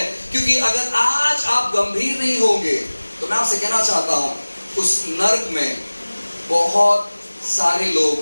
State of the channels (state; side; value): inverted; both; correlation -1.00